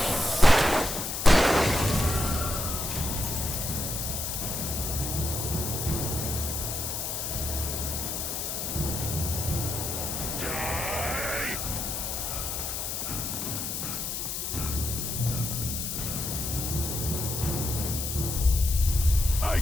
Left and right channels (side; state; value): left; noise; hiss, 3 dB below the sound